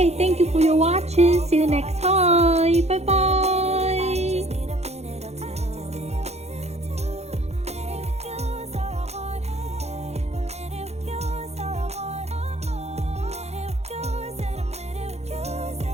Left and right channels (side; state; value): left; late; 0.31 ms